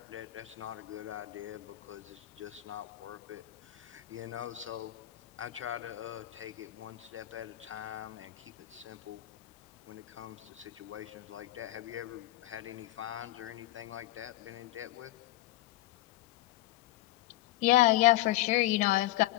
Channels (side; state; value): right; quieter; 16.0 dB